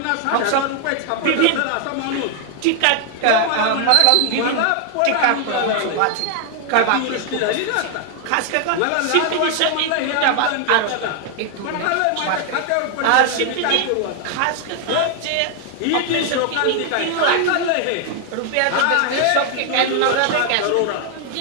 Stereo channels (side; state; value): both; different; correlation 0.00